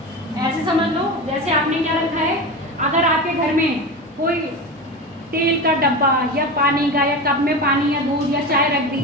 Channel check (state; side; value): normal; both; correlation 0.25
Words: ऐसे समझ लो जैसे आपने क्या रखा है, अगर आपके घर में कोई तेल का डब्बा या पानी का या कप में पानी या दूध या चाय रख दी,